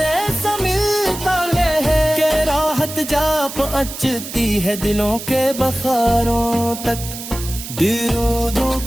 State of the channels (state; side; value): noise; right; hiss, 10 dB below the sound